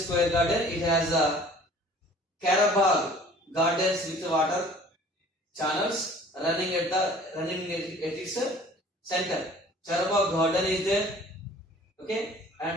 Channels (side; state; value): both; normal; correlation 0.50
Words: garden, it has a Karabagh gardens with water channels running at its center. Karabagh garden is there. Okay,